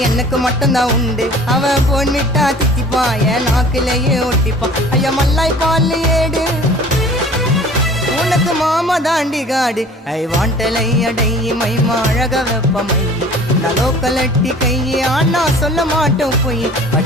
எனக்கு மட்டும்தான் உண்டு அவன் போன் விட்டா தித்திப்பான் என் நாக்குலயே ஒட்டிப்பான் ஐயா மல்லாய் பால் ஏடு உனக்கு மாமா தாண்டி காடு ஐ வாண்டலை அடை மைமா அழக வெப்பமை நலோக்கலட்டி கையே ஆனா சொல்ல மாட்டோம் போய்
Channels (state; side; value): normal; both; correlation 0.47